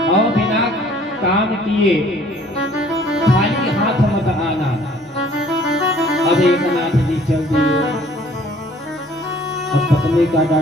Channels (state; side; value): normal; both; correlation 0.56